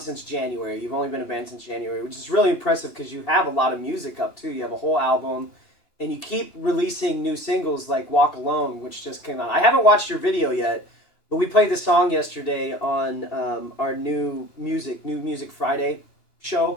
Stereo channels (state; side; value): late; right; 2.9 ms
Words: January. You've only been a band since January, which is really impressive because you have a lot of music up too. You have a whole album, and you keep releasing new singles like "Walk Alone," which just came out. I haven't watched your video yet, but we played the song yesterday on our New Music Friday